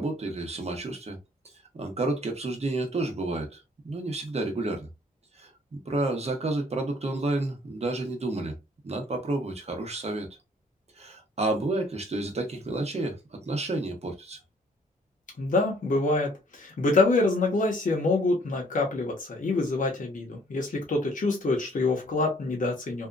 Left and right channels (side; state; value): both; normal; correlation 0.60